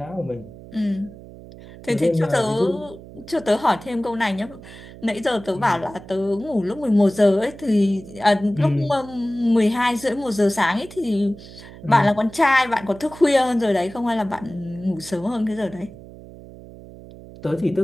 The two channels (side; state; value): right; noise; hum, 17 dB below the sound